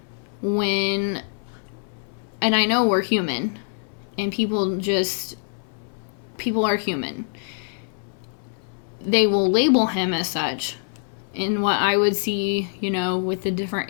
and I know we're human, and people are human. They will label him as such, and what I would see, with the different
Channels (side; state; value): right; silent; 60 dB below the other